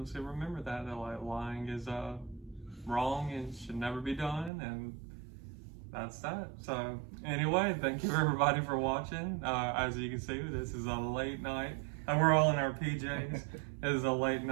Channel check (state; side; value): drops out; left; at 4.5 s